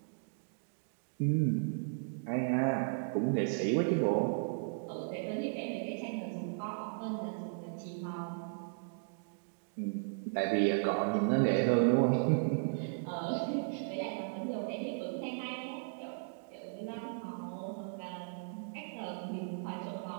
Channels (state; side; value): silent; left; digital silence